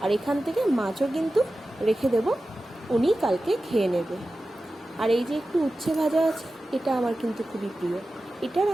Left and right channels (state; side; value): normal; both; correlation 0.94